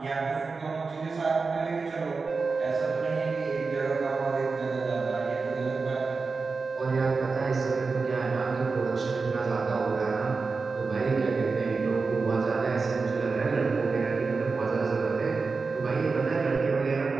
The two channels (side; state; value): left; quieter; 4.4 dB